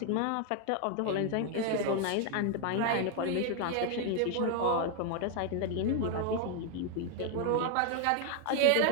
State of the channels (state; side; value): different; both; correlation 0.01